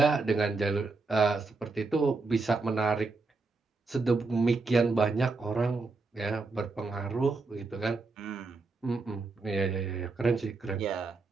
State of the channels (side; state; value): left; quieter; 3.8 dB